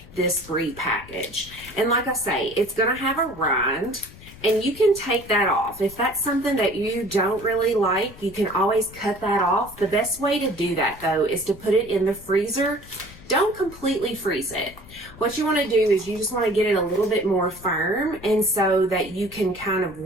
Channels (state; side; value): noise; left; rumble, 19 dB below the sound